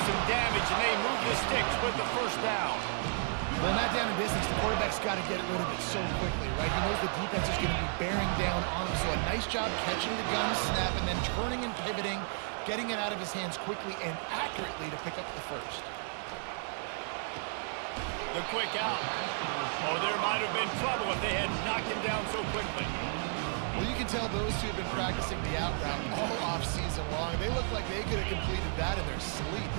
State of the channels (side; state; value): left; silent; 55 dB below the other